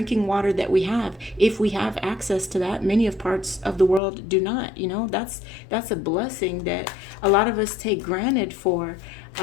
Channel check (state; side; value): drops out; right; at 4.0 s